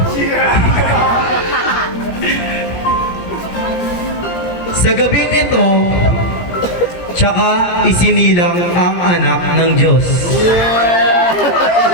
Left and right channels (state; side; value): late; right; 17 ms